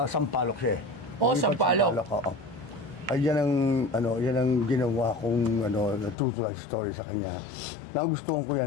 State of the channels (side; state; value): right; drops out; at 6.2 s